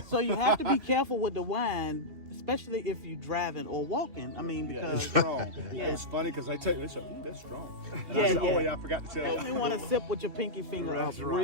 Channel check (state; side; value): late; left; 2.7 ms